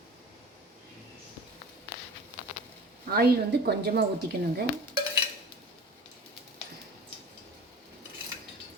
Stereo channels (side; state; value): both; normal; correlation 0.39